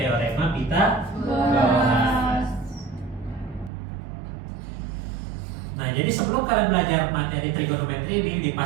Pitagoras. Nah, jadi sebelum kalian belajar materi trigonometri ini,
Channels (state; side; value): drops out; left; at 3.7 s